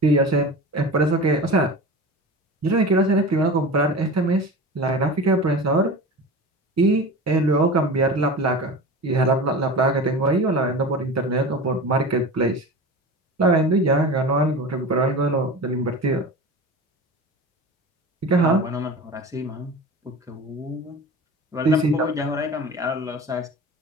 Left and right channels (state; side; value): normal; both; correlation 0.32